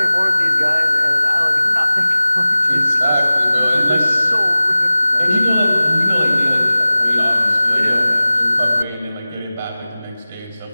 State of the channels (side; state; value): both; inverted; correlation -0.97